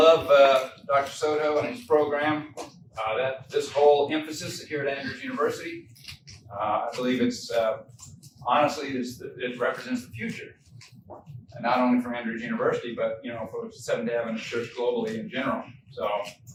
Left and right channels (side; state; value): both; identical; correlation 1.00